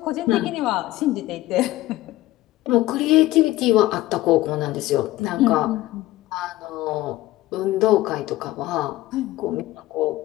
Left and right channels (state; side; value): quieter; right; 16.5 dB